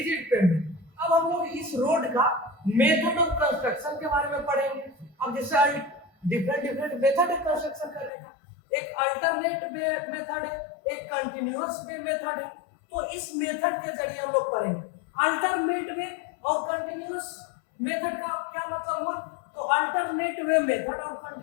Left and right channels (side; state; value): right; drops out; at 8.1 s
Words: पेवमेंट। अब हम लोग इस रोड का मेथड ऑफ कंस्ट्रक्शन के बारे में पढ़ेंगे। अब जैसे डिफरेंट मेथड है कंस्ट्रक्शन करने का, एक अल्टरनेट वे मेथड है, एक कंटिन्यूअस वे मेथड है। तो इस मेथड के जरिए हम लोग पढ़ेंगे। अल्टरनेट वे और कंटिन्यूअस मेथड का क्या मतलब हुआ? तो अल्टरनेट वे मेथड और